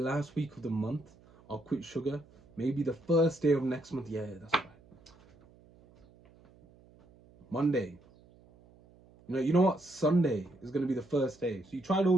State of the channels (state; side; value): noise; right; hum, 27 dB below the sound